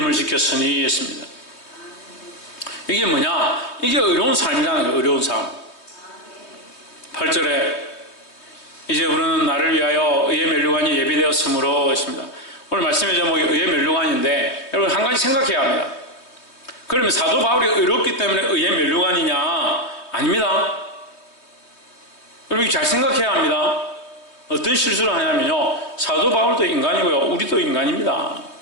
지켰으니 했습니다. 이게 뭐냐? 이게 어려운 삶이라는 거예요. 어려운 삶. 8절에 이제 우리는 나를 위하여 의의 면류관이 예비되었으므로 했습니다. 오늘 말씀의 제목이 의의 면류관인데 여러분 한 가지 생각해야 합니다. 그러면 사도 바울이 의롭기 때문에 의의 면류관이냐? 아닙니다. 여러분 잘 생각해야 합니다. 어떤 실수를 하냐면요, 사도 바울도 인간이고요, 우리도 인간입니다.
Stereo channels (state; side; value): late; right; 3.2 ms